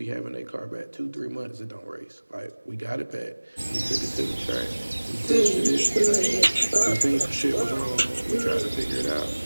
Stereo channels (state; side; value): inverted; both; correlation -1.00